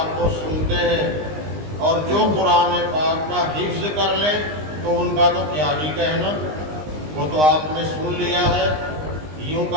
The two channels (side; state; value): left; late; 20 ms